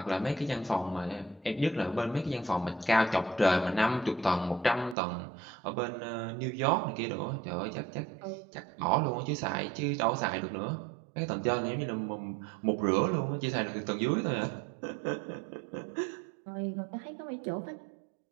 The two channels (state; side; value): drops out; left; at 5.0 s